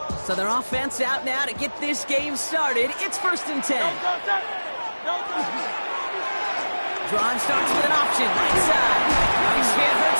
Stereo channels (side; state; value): both; inverted; correlation -1.00